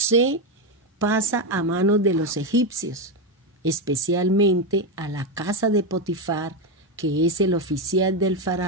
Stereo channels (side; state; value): both; normal; correlation 0.09